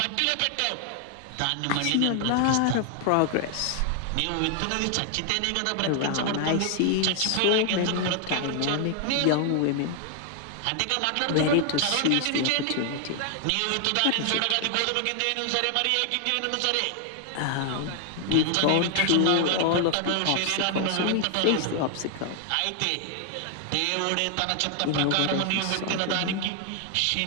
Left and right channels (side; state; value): both; different; correlation 0.00